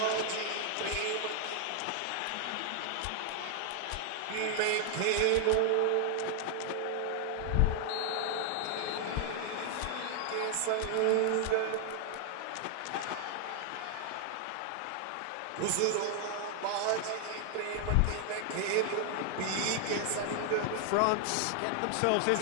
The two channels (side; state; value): both; different; correlation 0.00